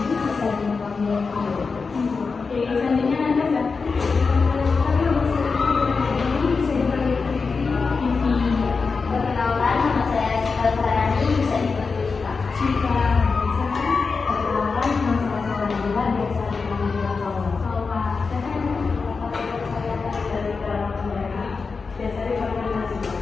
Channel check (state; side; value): quieter; right; 4.7 dB